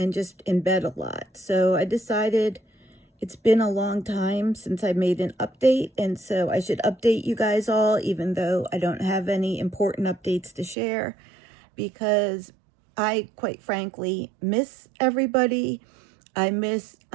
just in bed a lot. So I decided it's been a long time since I made an update. And so I should update you guys all, even though I don't have any important updates to share, because I, quite frankly, miss everybody. I miss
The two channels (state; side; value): drops out; left; at 10.8 s